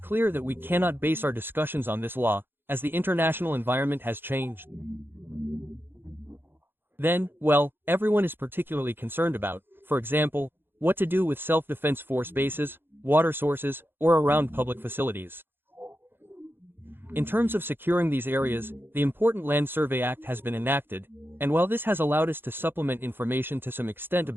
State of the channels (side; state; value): left; late; 0.10 ms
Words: that we cannot base our discussions on this law, as the international environment has changed. Then, well, everyone is particularly concerned about, for example, what to do with self-defense force bases, water sources, or around public facilities. In terms of securing these areas, the Important Land Survey Act has been enacted, and while this has allowed us to supplement information to some extent